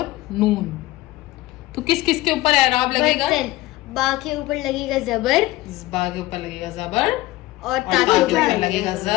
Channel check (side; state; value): right; quieter; 17.9 dB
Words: नून, तो किस किस के ऊपर एराब लगेगा, बा के ऊपर लगेगा जबर, बा के ऊपर लगेगा जबर, और ता के ऊपर लगेगा